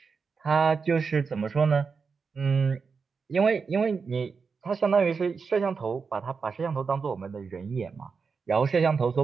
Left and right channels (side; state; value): left; quieter; 5.2 dB